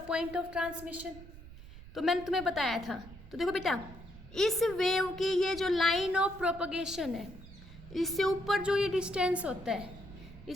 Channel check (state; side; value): noise; right; rumble, 17 dB below the sound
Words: पॉइंट ऑफ ट्रांसमिशन, तो मैंने तुम्हें बताया था। तो देखो बेटा, इस वेव की ये जो लाइन ऑफ प्रोपगेशन है, इससे ऊपर जो ये डिस्टेंस होता है,